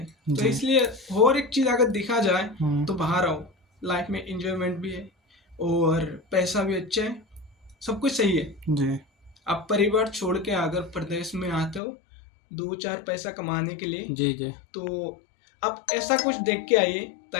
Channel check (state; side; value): drops out; right; at 11.8 s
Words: तो इसलिए और एक चीज अगर देखा जाए तो बाहर आओ, लाइफ में इंजॉयमेंट भी है और पैसा भी अच्छा है, सब कुछ सही है। जी आप परिवार छोड़ के अगर प्रदेश में आते हो 2-4 पैसा कमाने के लिए, जी जी तो आप ऐसा कुछ देख के आइए